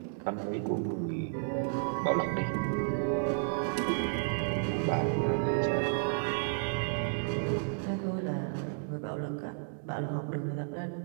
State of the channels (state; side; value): silent; left; digital silence